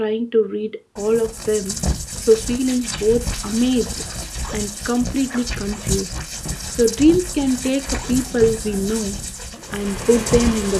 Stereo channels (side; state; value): both; identical; correlation 1.00